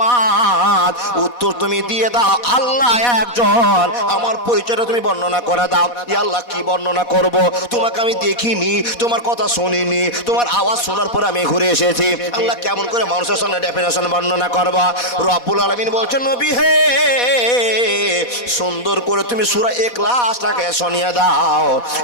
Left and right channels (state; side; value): late; right; 4.1 ms